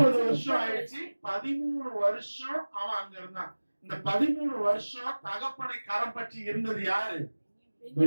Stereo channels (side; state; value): both; inverted; correlation -1.00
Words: வருஷம் ஆயிடுச்சு. 13 வருஷம் அவன் அங்க இருந்தான். இந்த 13 வருஷம் தகப்பனை கரம் பற்றி இருந்தது யாரு?